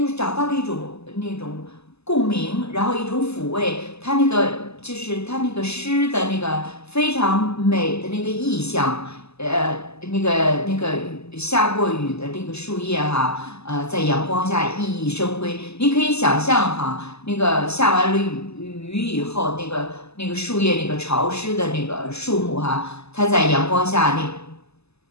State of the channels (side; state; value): right; late; 0.79 ms